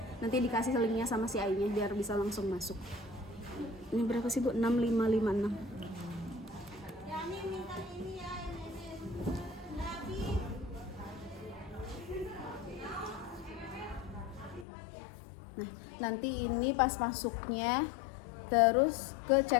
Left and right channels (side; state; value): right; drops out; at 14.7 s